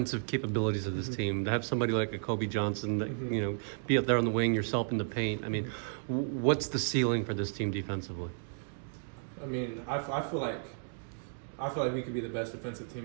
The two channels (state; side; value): silent; left; digital silence